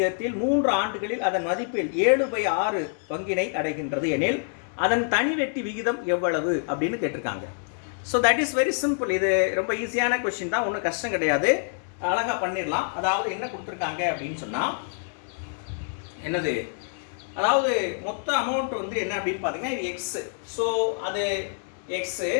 3 ஆண்டுகளில் அதன் மதிப்பில் 7/6 பங்கினை அடைகின்றது எனில் அதன் தனிவட்டி விகிதம் எவ்வளவு அப்படின்னு கேட்டிருக்காங்க. So that is very simple. இது ரொம்ப ஈஸியான கொஸ்டின் தான், ஒன்றும் கஷ்டம் கிடையாது, அழகாக பண்ணிடலாம். அதாவது என்ன கொடுத்துருக்காங்க அப்படின்னு சொன்னால் என்னது, அதாவது மொத்த அமௌண்ட் வந்து என்ன அப்படின்னு பார்த்தீங்கன்னா இது எக்ஸ். ஸோ அது எக்ஸு.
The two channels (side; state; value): right; silent; 60 dB below the other